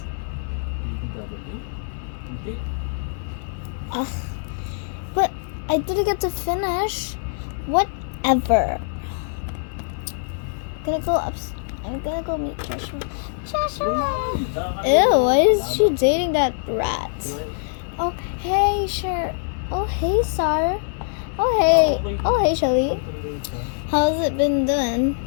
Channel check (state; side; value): silent; right; digital silence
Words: Ugh. But I didn't get to finish. Whatever. I'm gonna go meet Joshua. Joshua! Ew, why is she dating that rat? Oh, hey, sure. Oh, hey, Sar. Oh, hey, Shelly. How's it been doing?